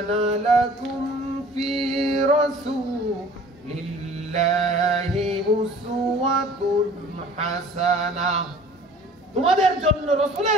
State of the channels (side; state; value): both; normal; correlation 0.48